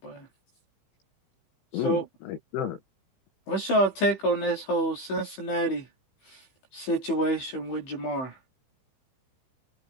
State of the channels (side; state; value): right; late; 15 ms